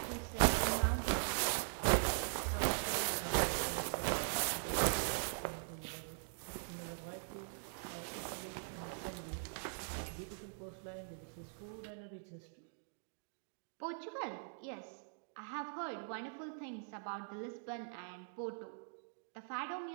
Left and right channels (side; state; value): left; silent; digital silence